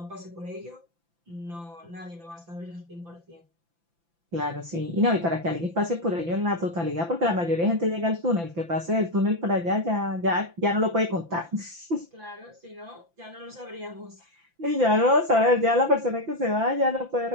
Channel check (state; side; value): late; left; 5.9 ms